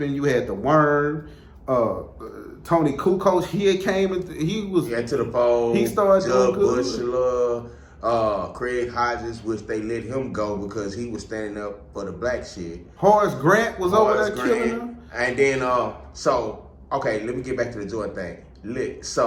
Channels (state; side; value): identical; both; correlation 1.00